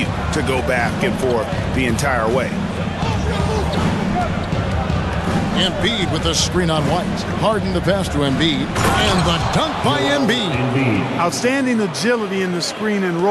to go back and forth the entire way. Embiid with the screen on White. Harden the pass to Embiid. And the dunk by Embiid. Outstanding agility in the screen and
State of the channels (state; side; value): identical; both; correlation 1.00